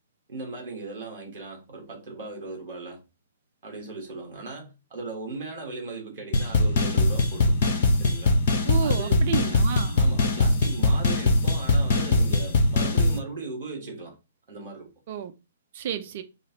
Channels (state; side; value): inverted; both; correlation -0.68